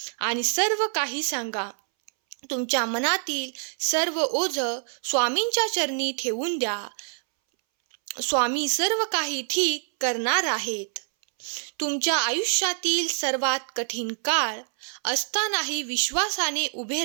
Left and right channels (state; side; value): silent; left; 61 dB below the other